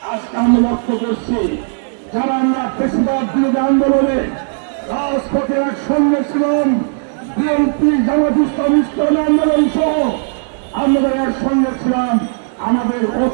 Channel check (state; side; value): silent; left; 64 dB below the other